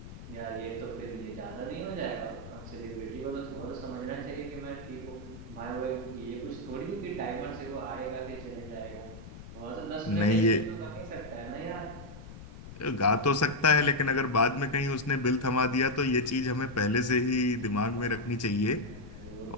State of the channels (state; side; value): noise; left; rumble, 14 dB below the sound